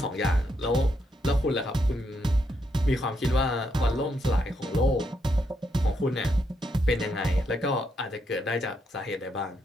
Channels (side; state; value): both; normal; correlation 0.78